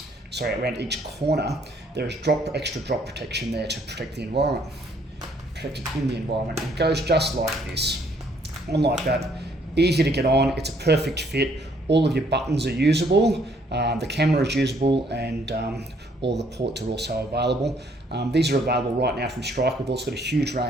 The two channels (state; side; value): normal; both; correlation 0.65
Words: each corner, there is extra drop protection there to protect the environment, protect it in the environment. It goes just like this, on like that, easy to get on, it's a perfect fit. All of your buttons are usable, the camera is usable, and all the ports are also available. These are available right now from Strike. We've also got a huge